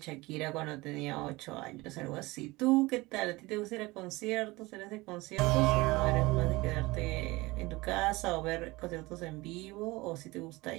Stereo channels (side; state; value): left; quieter; 21.7 dB